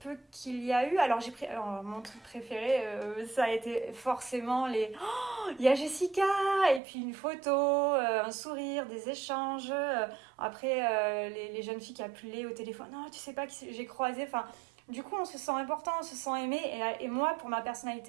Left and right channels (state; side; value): drops out; left; at 6.8 s